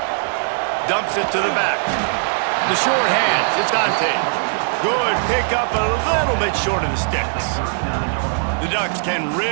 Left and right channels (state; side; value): silent; left; digital silence